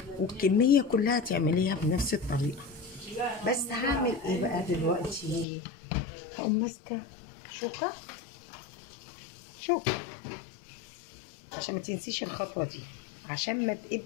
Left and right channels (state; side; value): drops out; right; at 5.5 s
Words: والكميه كلها تعمليها بنفس الطريقه. بس هعمل ايه بقى دلوقتي؟ هقوم ماسكه شوكه عشان ما تنسيش الخطوه دي، عشان ما